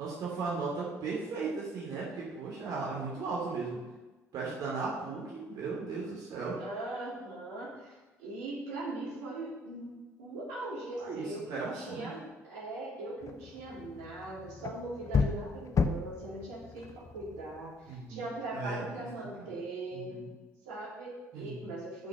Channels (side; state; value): both; normal; correlation 0.59